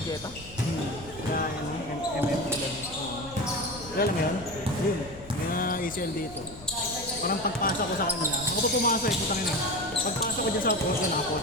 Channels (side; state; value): left; noise; hum, 19 dB below the sound